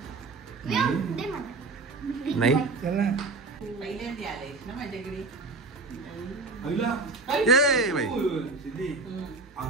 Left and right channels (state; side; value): quieter; left; 3.6 dB